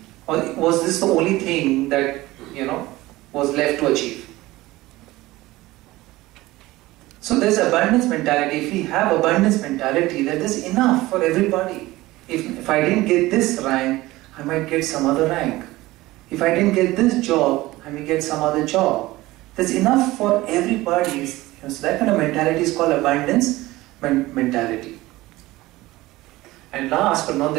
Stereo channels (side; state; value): left; quieter; 18.6 dB